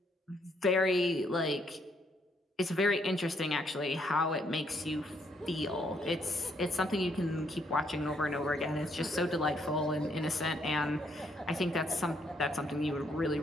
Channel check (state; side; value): normal; both; correlation 0.72